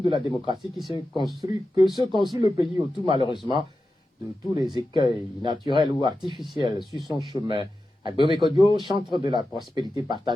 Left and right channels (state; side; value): normal; both; correlation 0.92